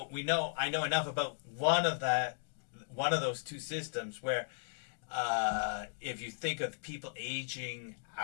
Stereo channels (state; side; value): silent; right; digital silence